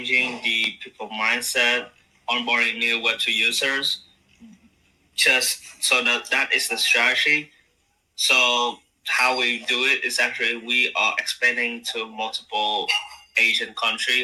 the people mindset, onboarding new Web2 users. Just so that is the strategy. So how we do it is actually we are expanding to multiple Asian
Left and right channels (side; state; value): both; identical; correlation 1.00